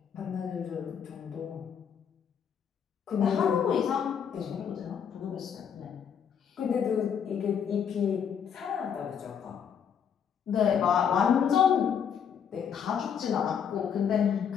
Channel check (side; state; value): right; quieter; 7.8 dB